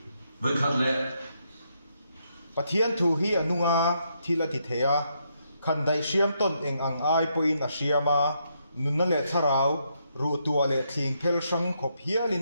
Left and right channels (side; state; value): both; inverted; correlation -0.77